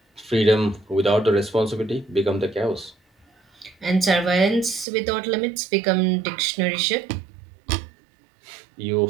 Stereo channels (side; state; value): left; drops out; at 4.9 s